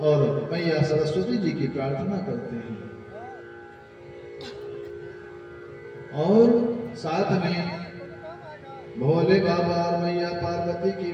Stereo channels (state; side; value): identical; both; correlation 1.00